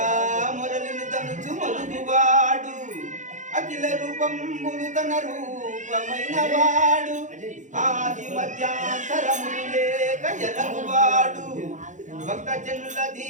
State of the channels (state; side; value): late; left; 0.36 ms